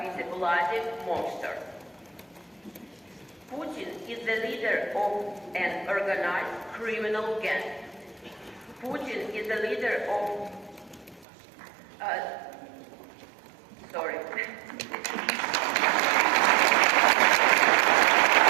with a bloody monster. Putin is the leader of an organized criminal gang. Putin is the leader of...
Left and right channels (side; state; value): left; drops out; at 11.2 s